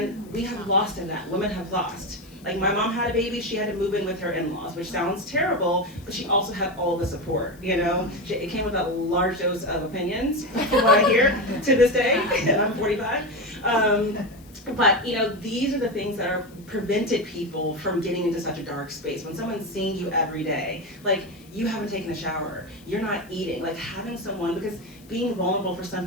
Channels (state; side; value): noise; left; hiss, 26 dB below the sound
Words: we have lost in that. Women have lost. Like my mom had a baby, she had to move in with her in-laws, which sounds terrible, but she also had all the support, you know? It came with a large dose of opinions, from what I hear to this day, and I'm 45. But you know, these are the things that are prevented people from getting into such a dark space. When someone's seeing you every day, like you haven't taken a shower, you're not eating, like having someone, because being vulnerable for some